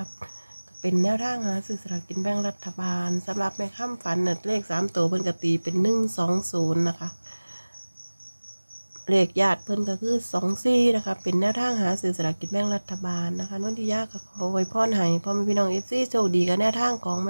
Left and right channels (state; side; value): inverted; both; correlation -1.00